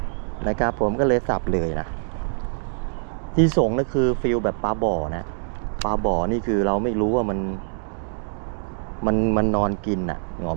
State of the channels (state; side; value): silent; left; digital silence